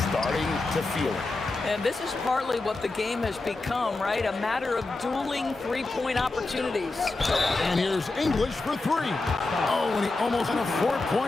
starting to feel it. And this is partly what the game has become, right? A matter of dueling three-point opportunities. And here's English for 3. Oh, and he almost had a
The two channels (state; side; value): quieter; right; 3.3 dB